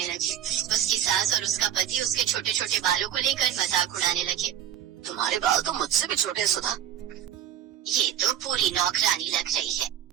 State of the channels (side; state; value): left; quieter; 10.7 dB